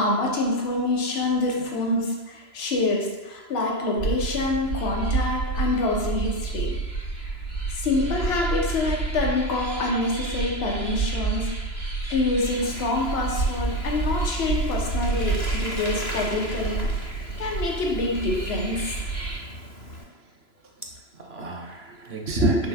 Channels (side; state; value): right; late; 3.0 ms